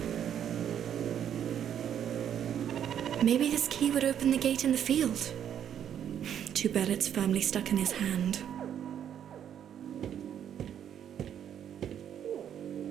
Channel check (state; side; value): quieter; left; 9.5 dB